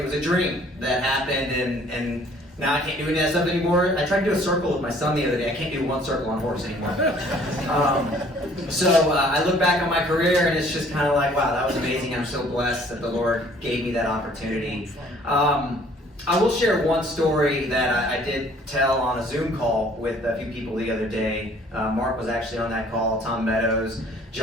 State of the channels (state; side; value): normal; both; correlation 0.57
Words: was a dream that happened, and now I can't do any of that stuff anymore. I tried to do a circle with my son the other day. I can't do one circle on horse anymore. So I look back on my career and it's just kind of like, wow, that was amazing. I'm so blessed that the Lord gave me that opportunity. I will share one story that I did tell on a Zoom call with a few people the other day. Mark was actually on that call, Tom Meadows,